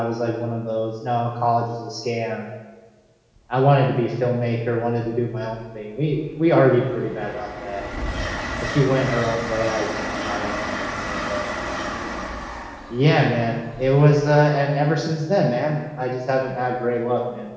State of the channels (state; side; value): identical; both; correlation 1.00